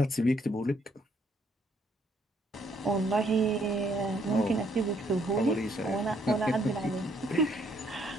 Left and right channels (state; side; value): normal; both; correlation 0.69